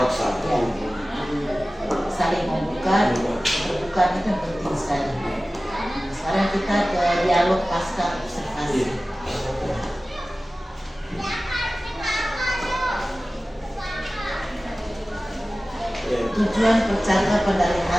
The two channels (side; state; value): both; normal; correlation 0.97